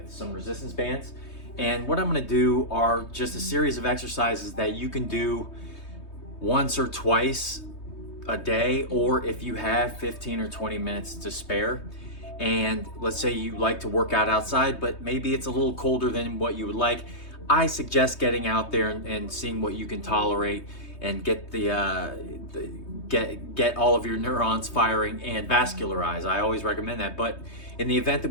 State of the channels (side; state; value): right; late; 3.2 ms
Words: some resistance bands. And what I'm gonna do are just a series of exercises that you can do once or twice a day, or if you have 15 or 20 minutes to spare. And let's say you like to work out outside, but maybe it's a little colder than what you would like. I suggest getting out there and seeing what you can tolerate and get get all of your neurons firing and vascularize. I always recommend that. But in the event